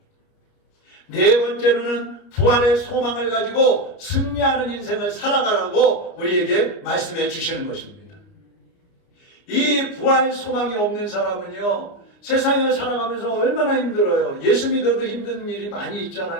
네 번째로는 부활의 소망을 가지고 승리하는 인생을 살아가라고 우리에게 말씀해 주시는 것입니다. 이 부활 소망이 없는 사람은요, 세상을 살아가면서 얼마나 힘들어요. 예수 믿어도 힘든 일이 많이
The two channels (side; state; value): right; late; 29 ms